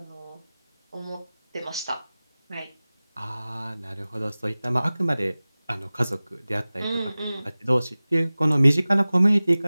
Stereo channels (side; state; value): both; inverted; correlation -0.98